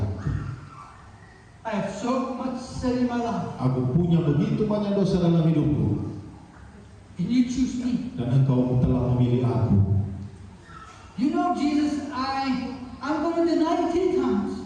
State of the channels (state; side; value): identical; both; correlation 1.00